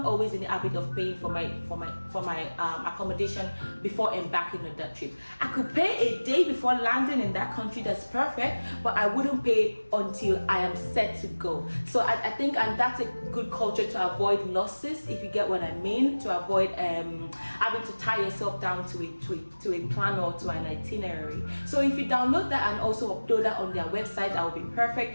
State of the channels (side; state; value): both; inverted; correlation -1.00